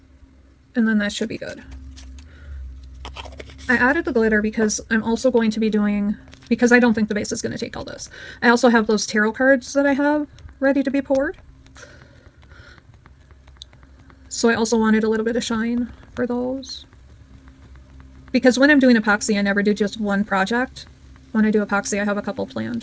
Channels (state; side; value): identical; both; correlation 1.00